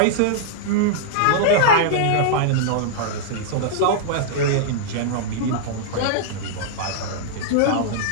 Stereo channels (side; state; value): both; different; correlation -0.01